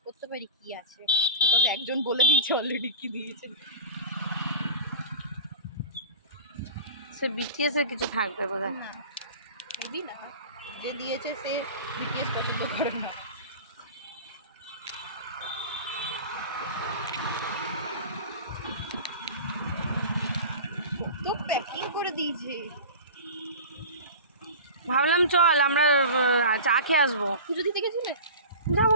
করতে পারি কি আছে, বিকজ একজন বলে দিয়েছে অলরেডি কি দিয়েছে। সে বিটিএস এর কিছু থাকবে বোধহয়। না মেবি না, যে দিয়েছে সে বিটিএস পছন্দ করে না। তো প্যাকিং করে দিয়েছে। ভাবলাম চল আমরা চা খেয়ে আসবো। পুজো দিতে গেছিলে? যাবো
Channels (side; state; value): both; inverted; correlation -0.33